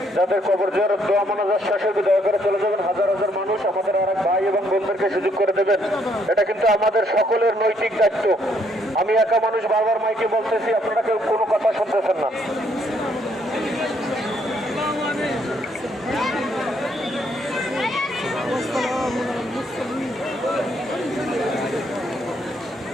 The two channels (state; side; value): normal; both; correlation 0.70